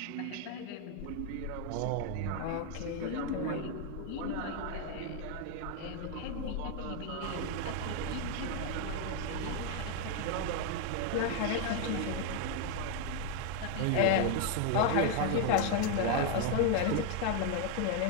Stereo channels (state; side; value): different; both; correlation 0.01